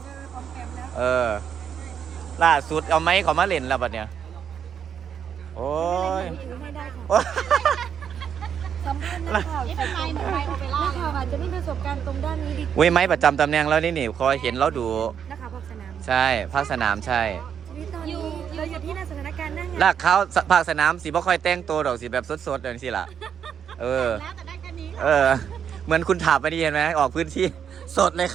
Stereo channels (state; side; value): quieter; left; 8.1 dB